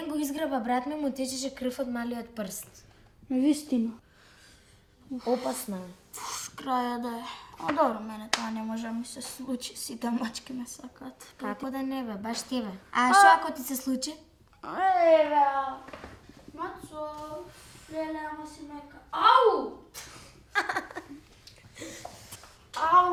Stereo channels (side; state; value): both; identical; correlation 1.00